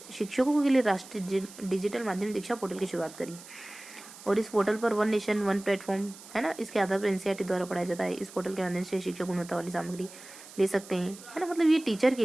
शिक्षकों के लिए राष्ट्रीय डिजिटल माध्यम दीक्षा पोर्टल की शुरुआत करी। और इस पोर्टल पर वन नेशन वन प्लेटफॉर्म, है ना, इसके आधार पर एनसीईआरटी द्वारा पढ़ाया जाता है। इस पोर्टल के माध्यम से शिक्षक गुणवत्ता वाली सामग्री ले सकते हैं, है ना। मतलब ये टीचर के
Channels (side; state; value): right; noise; hiss, 18 dB below the sound